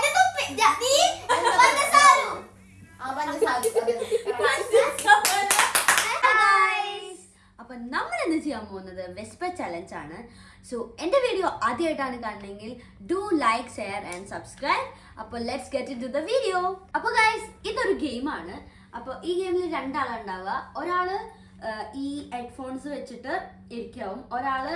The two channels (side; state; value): both; identical; correlation 1.00